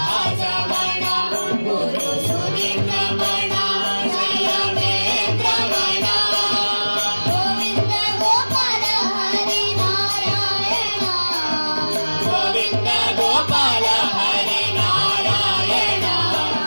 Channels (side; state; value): both; inverted; correlation -1.00